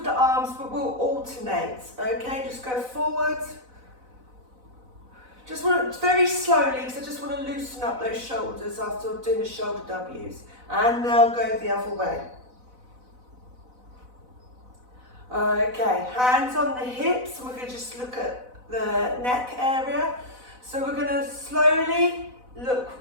the arms, but we'll alternate, okay? Just go forward. Just want to, very slowly, because I just want to loosen up those shoulders after doing the shoulder W's. And now go the other way. Okay, hands on the hips, and we're going to just look at the neck area. So we're going to slowly look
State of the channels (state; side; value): late; left; 4.0 ms